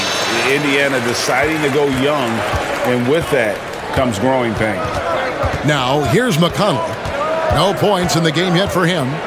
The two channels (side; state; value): both; identical; correlation 1.00